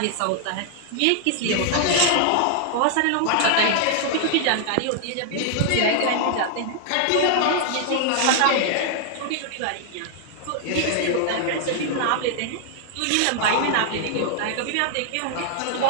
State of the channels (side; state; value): both; different; correlation 0.00